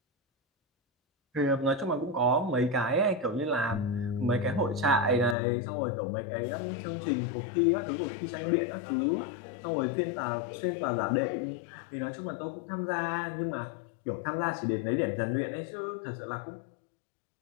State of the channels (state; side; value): drops out; right; at 5.4 s